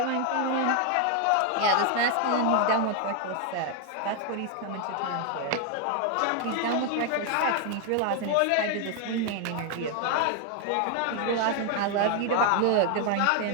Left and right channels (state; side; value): different; both; correlation 0.01